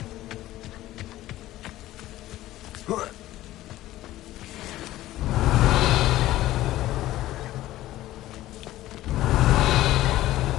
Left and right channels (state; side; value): quieter; right; 15.3 dB